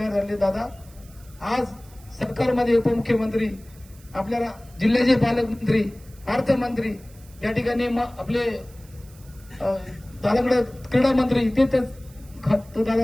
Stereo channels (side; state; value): right; noise; hiss, 25 dB below the sound